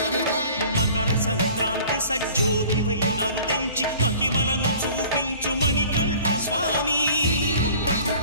మకర సంక్రాంతి సజ్జోతివై అరుదెంచి మహిమలను చూపించు మణికంఠ స్వామి.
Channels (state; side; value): inverted; both; correlation -0.47